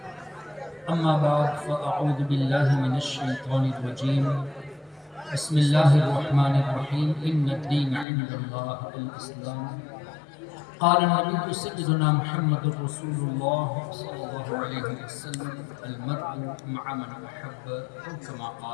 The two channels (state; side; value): drops out; right; at 8.1 s